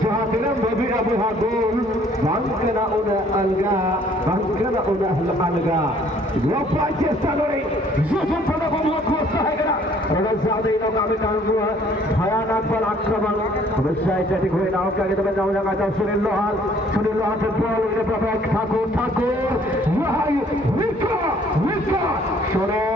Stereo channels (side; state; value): both; normal; correlation 0.59